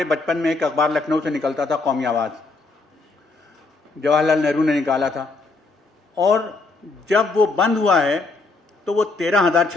بچپن میں ایک اخبار لکھنؤ سے نکلتا تھا قومی آواز، جواہر لال نہرو نے نکالا تھا، اور جب وہ بند ہوا ہے تو وہ 13,000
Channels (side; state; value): right; quieter; 3.6 dB